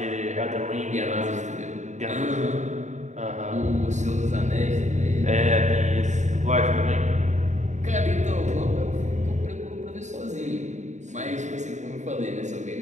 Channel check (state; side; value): late; left; 0.34 ms